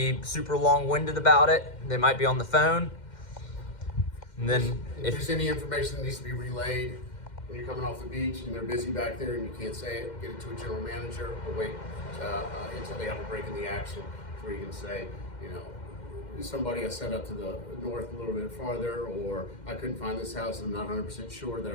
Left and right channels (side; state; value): right; late; 2.1 ms